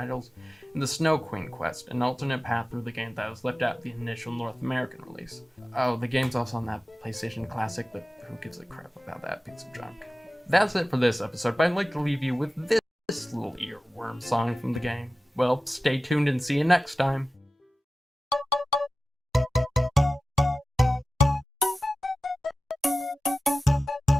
and the Snow Queen quest, an alternate path through the game that was left out of the initial North American release. Oh, the game's also on that PlayStation Classic, but who gives a crap about that piece of junk? That's it for this episode, but I'd like to leave you with this little earworm song from the game. Well, stay tuned and see you next time.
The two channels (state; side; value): normal; both; correlation 0.94